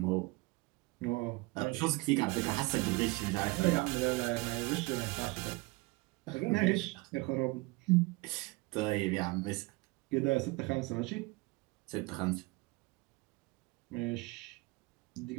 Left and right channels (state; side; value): quieter; left; 24.6 dB